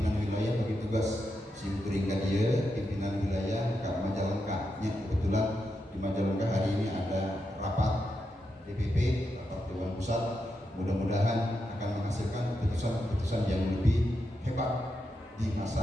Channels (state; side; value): normal; both; correlation 0.85